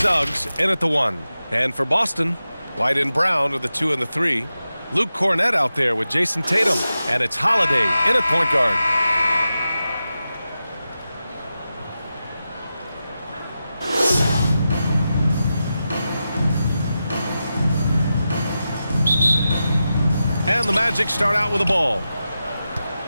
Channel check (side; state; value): both; inverted; correlation -0.91